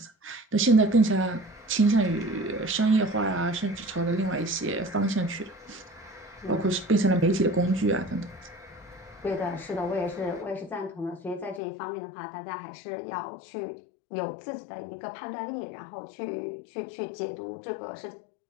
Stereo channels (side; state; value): right; drops out; at 11.6 s